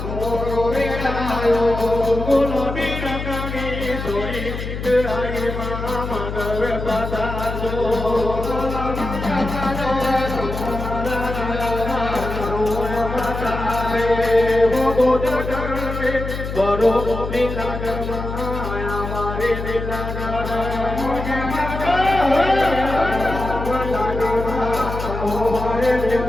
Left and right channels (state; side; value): noise; left; hum, 6 dB below the sound